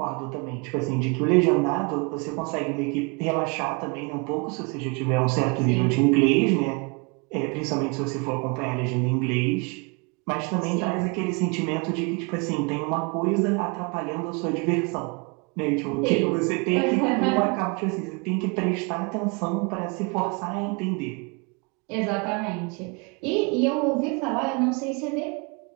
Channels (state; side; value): quieter; left; 31.6 dB